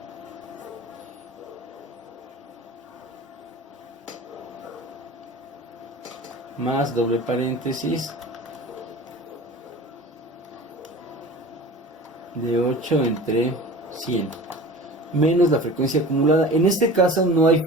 más doble paréntesis de 8 entre 100 menos la frecuencia acumulada. En este caso no hay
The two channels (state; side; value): normal; both; correlation 0.38